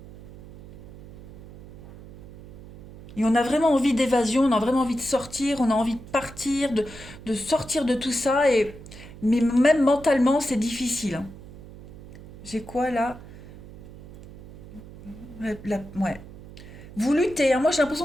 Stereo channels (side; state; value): right; noise; hum, 17 dB below the sound